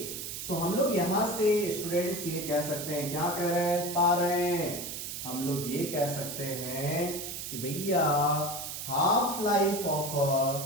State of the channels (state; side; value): noise; right; hiss, 7 dB below the sound